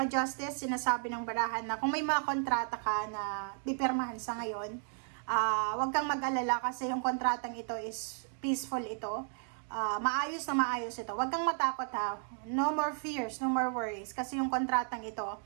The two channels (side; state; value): left; silent; 55 dB below the other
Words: Justice, sinasabi ng baraha na kung may mga kontrata ka na pipirmahan sa ngayon, huwag kang mag-alala kasi yung kontratang ito is peaceful ito. maayos na maayos ito. Huwag kang matakot ha. No more fears, no more worries. Kasi yung kontratang ito,